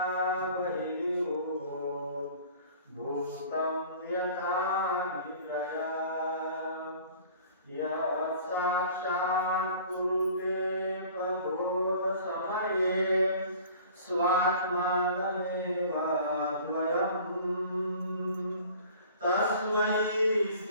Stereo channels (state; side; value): inverted; both; correlation -0.47